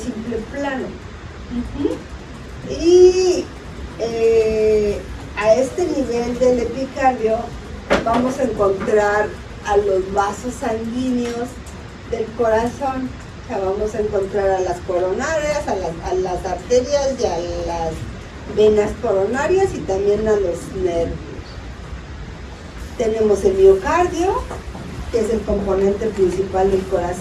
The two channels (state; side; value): identical; both; correlation 1.00